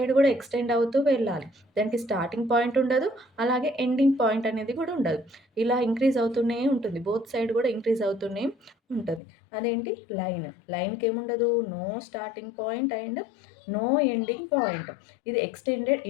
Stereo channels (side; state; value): right; drops out; at 9.2 s